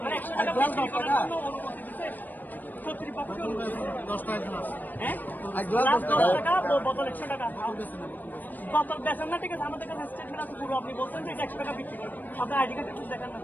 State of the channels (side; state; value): right; late; 0.087 ms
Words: মানে 100 টাকা বিক্রি করার জন্য অনুমতি দিচ্ছে কর্তৃপক্ষ? 10 টাকা। হ্যাঁ, 10 টাকা বোতল 100 টাকা বোতল বেচেন না? ঠিক আছে, আমাদের কাছে স্টেটমেন্ট আছে পুরো। আপনি বলছেন যে 100 টাকা বিক্রি করেন, আপনার আইডি কার্ড একটু দেখান না।